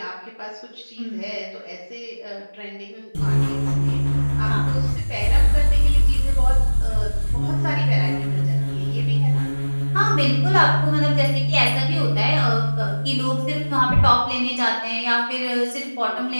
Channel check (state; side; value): inverted; both; correlation -1.00